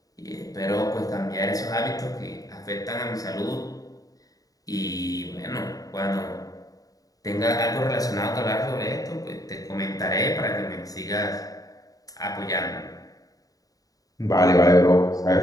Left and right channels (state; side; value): late; right; 0.18 ms